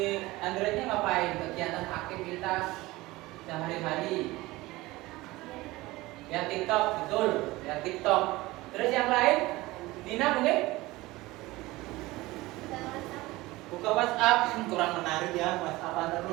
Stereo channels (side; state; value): left; quieter; 19.7 dB